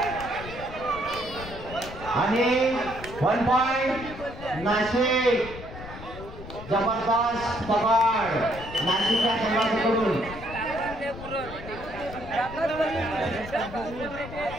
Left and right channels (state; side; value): noise; left; rumble, 13 dB below the sound